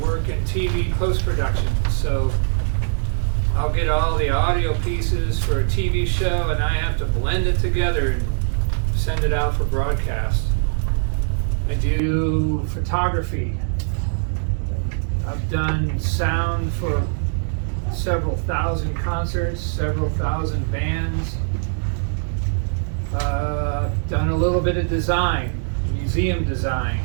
work in TV post-production, so I'll get all the audio pieces for a TV show and I have to blend it together and send it out for broadcast. I do photography. I've done sound for several thousand concerts, several thousand bands. Done a little bit of design, museum design.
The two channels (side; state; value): left; silent; digital silence